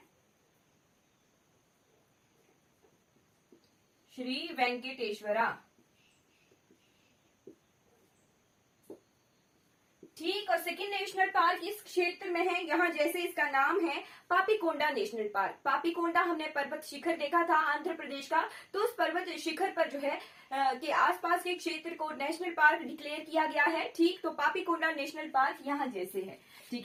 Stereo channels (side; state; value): both; identical; correlation 1.00